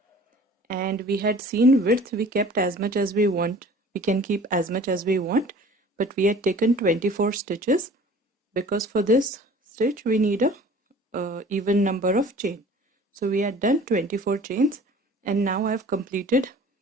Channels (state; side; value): normal; both; correlation 0.46